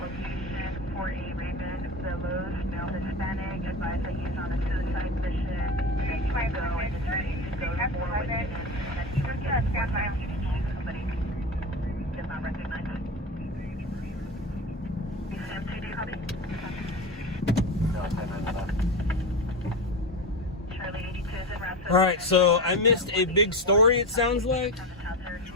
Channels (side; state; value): both; normal; correlation 0.23